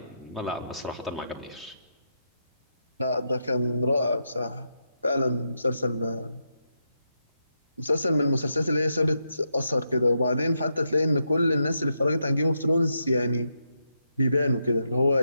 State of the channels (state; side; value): inverted; both; correlation -0.83